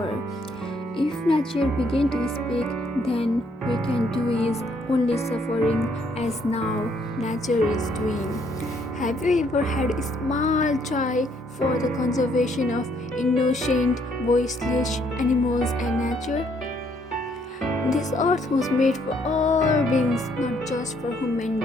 If nature begin to speak, then we can do is only suffering as now nature is doing. Have you ever had a small try for the conservation of innocent, voiceless animals and nature? This earth was made for all beings, not just for human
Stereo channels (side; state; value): both; normal; correlation 0.69